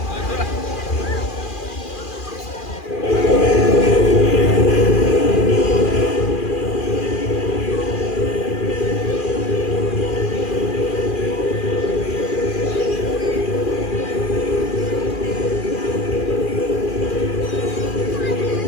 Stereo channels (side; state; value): right; late; 2.4 ms